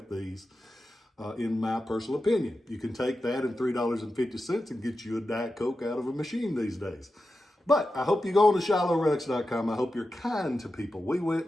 these, in my personal opinion. You can take that and $3.50 and get you a Diet Coke out of a machine these days. But I hope you go on to ShilohRelics.com. I hope you're kind to people. We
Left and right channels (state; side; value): normal; both; correlation 0.91